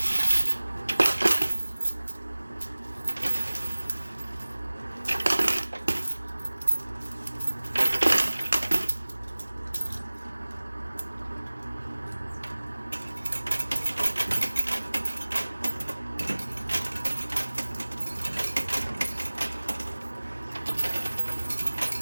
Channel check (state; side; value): inverted; both; correlation -1.00